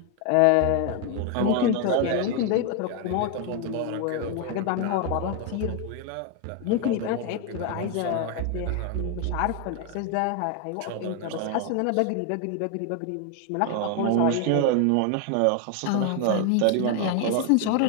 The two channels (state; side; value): different; both; correlation 0.01